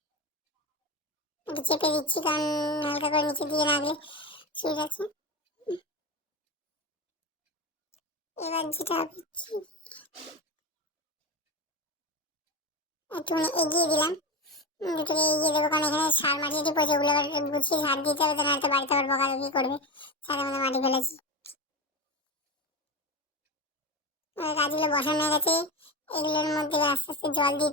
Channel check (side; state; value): both; normal; correlation 0.20